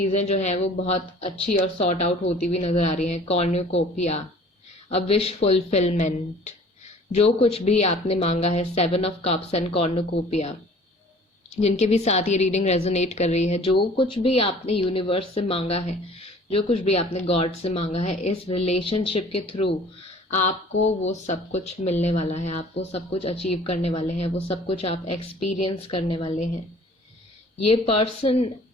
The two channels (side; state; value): both; normal; correlation 0.49